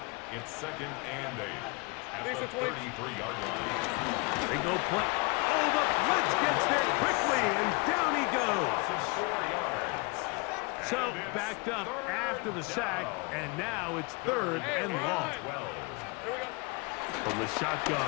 It's second and 8 at the 33-yard line. They go play. Oh, the blitz gets there quickly, and down he goes. 4 yards. So backed up after the sack, and now it's third and long. From the shotgun,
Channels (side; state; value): right; quieter; 29.3 dB